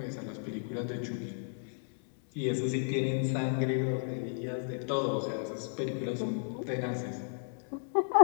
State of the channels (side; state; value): right; silent; 55 dB below the other